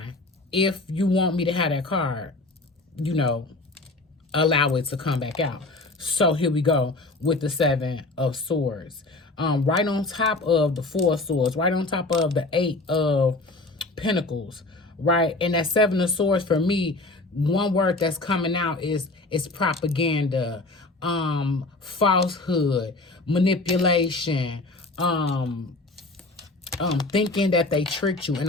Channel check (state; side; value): quieter; right; 3.1 dB